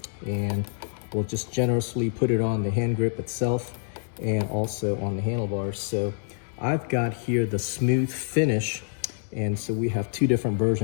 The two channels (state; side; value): silent; right; digital silence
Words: and we'll just generously put it on the hand grip itself and also on the handlebars. So I've got here the smooth finish, and so we have two different